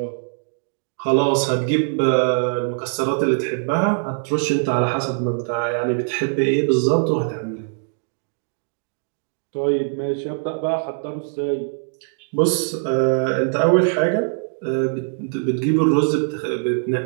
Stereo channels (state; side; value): silent; left; digital silence